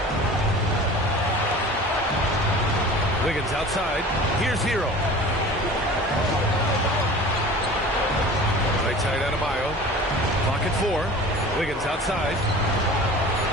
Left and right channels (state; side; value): normal; both; correlation 0.40